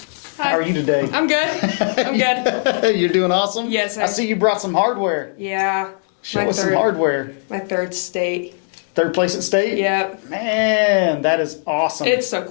How are you today? I'm good. I'm good. You're doing awesome? Yes, sir. I see you brought some hardware. Yeah. Show us some hardware. My third state. Third place at state? Yep. Man, that is awesome. It's so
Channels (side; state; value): right; silent; digital silence